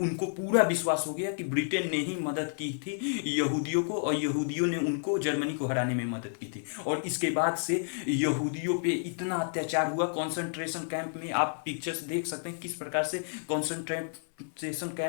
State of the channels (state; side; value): silent; right; 57 dB below the other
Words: पूरा विश्वास हो गया कि ब्रिटेन ने ही मदद की थी यहूदियों को, और यहूदियों ने उनको जर्मनी को हराने में मदद की थी। और इसके बाद से यहूदियों पे इतना अत्याचार हुआ कॉन्सेंट्रेशन कैंप में, आप पिक्चर्स देख सकते हैं किस प्रकार से कॉन्सेंट्रेशन